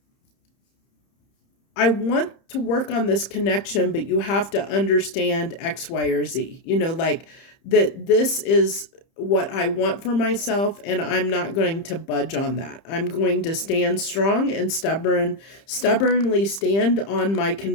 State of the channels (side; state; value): right; late; 30 ms